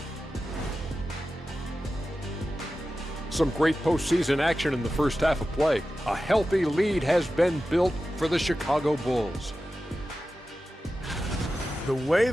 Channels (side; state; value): both; normal; correlation 0.93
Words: Some great postseason action in the first half of play. A healthy lead has been built for the Chicago Bulls. The way